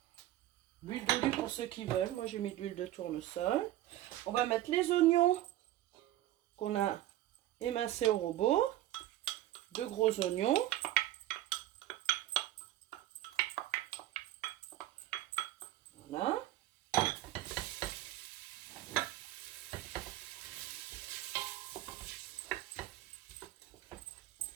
L'huile d'olive pour ceux qui veulent. Moi, j'ai mis de l'huile de tournesol. On va mettre les oignons qu'on a émincés au robot. 2 gros oignons. Voilà.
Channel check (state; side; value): quieter; left; 14.3 dB